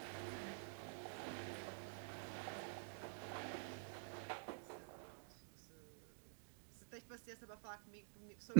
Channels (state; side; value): silent; left; digital silence